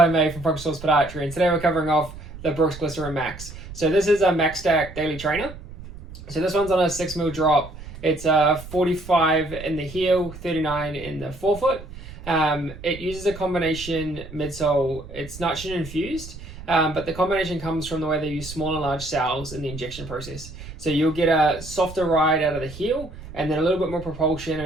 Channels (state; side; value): noise; right; rumble, 14 dB below the sound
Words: May from Focus Source Podiatry, and today we're covering off the Brooks Glycerin Max. So this is a Max Stack Daily Trainer. So this one's on a 6mm drop. It's 45 in the heel, 39 in the forefoot. It uses a combination midsole. It's nitrogen infused, but the combination comes from the way they use small and large cells in the injection process. So you'll get a softer ride out of the heel, and then a little bit more propulsion and